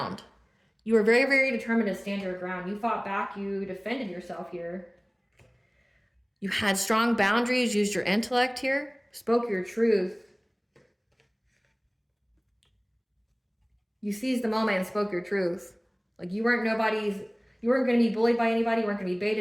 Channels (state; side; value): identical; both; correlation 1.00